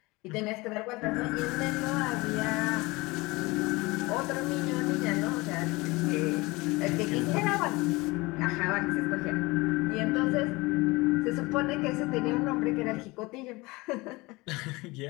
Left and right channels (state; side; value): quieter; right; 22.9 dB